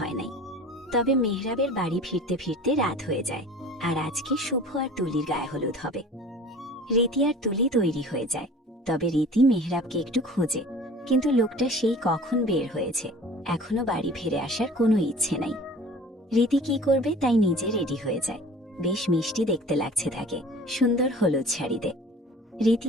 নাই। তবে মেহরাবের বাড়ি ফিরতে ফিরতে রাত হয়ে যায়। আর আজকে শুভ আর তুলির গায়ে হলুদ হবে। রীতি আর তুলি তৈরি হয়ে যায়। তবে রীতি মেহরাবকে একটু খোঁজে, কিন্তু লোকটা সেই কখন বের হয়েছে, এখনো বাড়ি ফিরে আসার কোনো ইচ্ছে নাই। রীতি কি করবে তাই নিজে রেডি হয়ে যায়। বেশ মিষ্টি দেখতে লাগছে তাকে, সুন্দর হলুদ শাড়িতে। রীতি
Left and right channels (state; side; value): normal; both; correlation 0.44